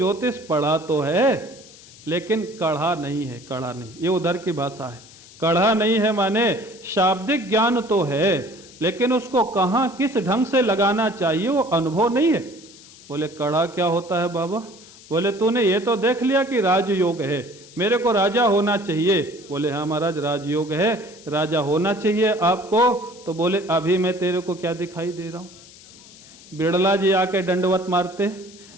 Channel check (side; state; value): left; noise; hiss, 21 dB below the sound